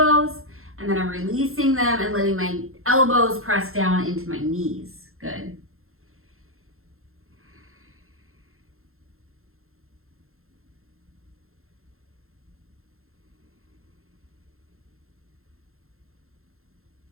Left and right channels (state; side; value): late; left; 0.62 ms